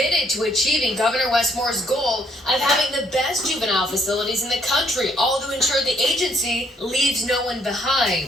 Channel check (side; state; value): both; normal; correlation 0.68